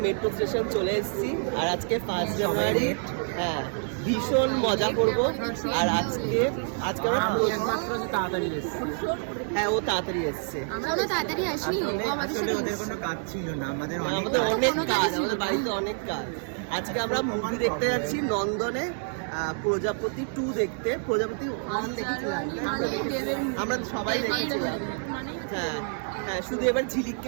মেট্রো স্টেশন চলে এসেছি আর আজকে 1 জানুয়ারি। হ্যাঁ, ভীষণ মজা করব। আর আজকে আমরা তাড়াতাড়ি এসেছি। হ্যাঁ, ও তাড়াতাড়ি এসছে। আমরা তাড়াতাড়ি আসিনি, আমাদের কোনো কাজ ছিল না, আমাদের অনেক কাজ, আমাদের বাড়িতে অনেক কাজ। আজকে আমরা মুভি দেখতে যাচ্ছি নন্দনে, প্রজাপতি 2 দেখতে। প্রজাপতি 1 দেখেছিলাম, আমরা সবাই দেখেছিলাম। হ্যাঁ হ্যাঁ, শুধু এবার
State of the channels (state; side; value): silent; left; 56 dB below the other